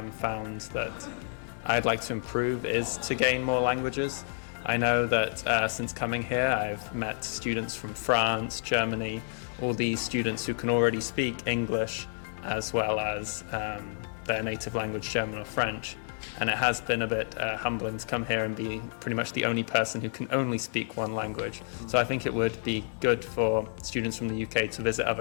found that I'd like to improve is to gain more languages. I know that since coming here, I've met students from France, Germany, all these students who can already speak English as well as their native language, German or French. And it has been a bit humbling to come here and be pretty much the only person who can only speak one language. So I think it would be good for students from the UK to visit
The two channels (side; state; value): right; silent; digital silence